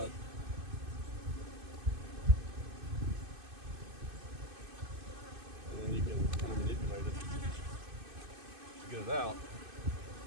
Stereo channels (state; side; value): late; left; 2.5 ms